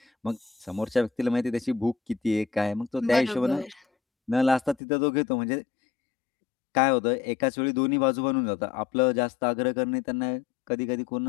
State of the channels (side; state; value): right; drops out; at 4.8 s